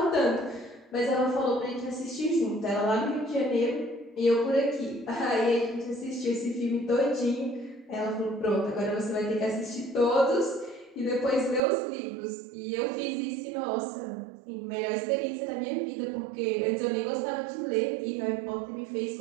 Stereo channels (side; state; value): left; drops out; at 11.6 s